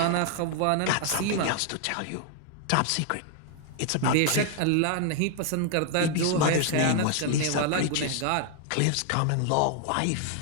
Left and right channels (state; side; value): different; both; correlation 0.00